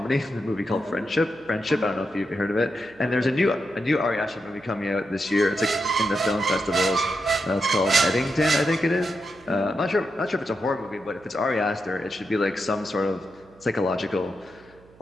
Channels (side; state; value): right; noise; hum, 27 dB below the sound